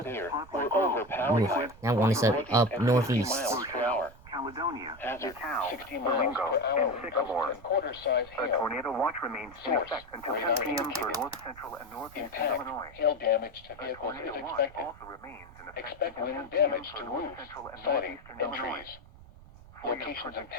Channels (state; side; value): noise; right; rumble, 20 dB below the sound